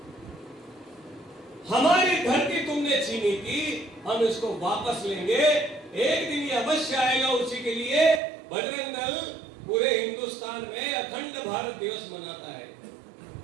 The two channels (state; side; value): drops out; left; at 8.2 s